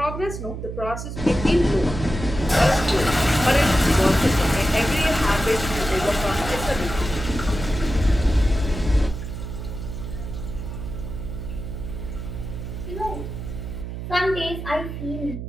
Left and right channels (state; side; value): noise; right; hum, 7 dB below the sound